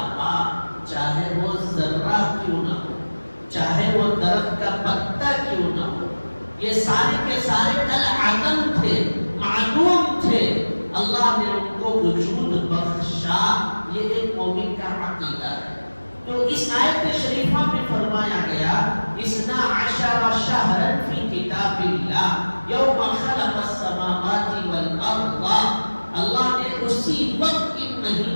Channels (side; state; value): both; inverted; correlation -1.00